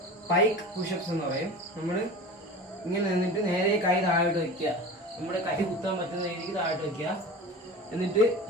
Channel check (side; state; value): both; normal; correlation 0.34